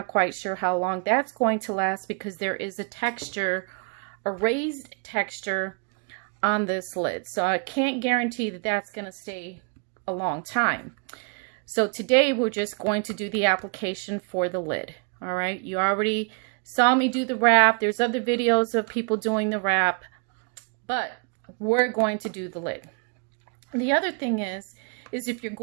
quite sure how long that's going to last because there is a texture, a raised texture on this lid. So I can't guarantee that that's going to stay a long time. So today we're just going to do the application for the lid. All right, you already saw me do the wrap. There's other videos of people doing the wrap, but we're going to do the lid. The other thing is if you're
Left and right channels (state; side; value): quieter; left; 37.4 dB